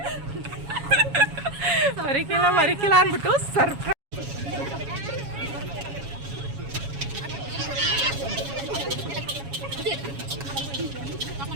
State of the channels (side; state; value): left; late; 7.2 ms